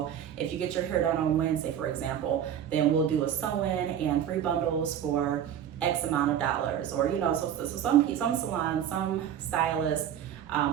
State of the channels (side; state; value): left; quieter; 9.6 dB